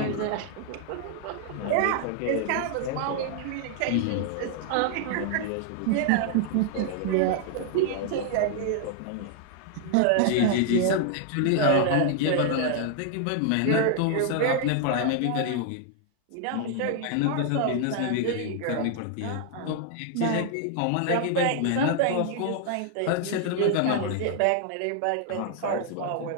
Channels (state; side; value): different; both; correlation -0.01